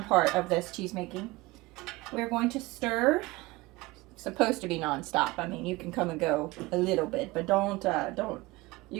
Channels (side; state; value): left; quieter; 21.1 dB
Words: part of this cheese making. We're going to stir. It's supposed to be non-stop. I mean, you can come and go a little bit, but don't. You